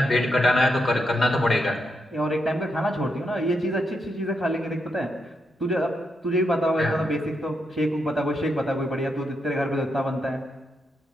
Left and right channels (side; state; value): both; normal; correlation 0.82